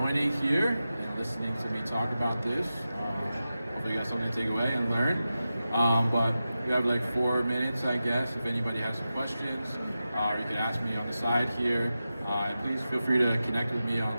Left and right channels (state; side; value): inverted; both; correlation -0.92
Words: here and listening to me talk about this. Hopefully you got something to take away and learn. But we have like 4 minutes, I guess, if anybody has some questions, or you can ask me on the side here. And please feel free to connect with me